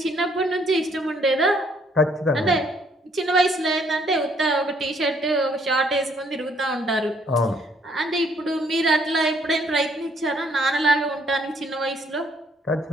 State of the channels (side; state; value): both; normal; correlation 0.66